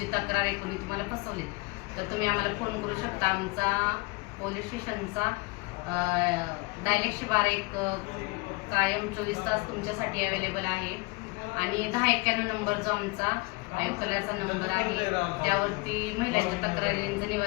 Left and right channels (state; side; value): quieter; right; 26.9 dB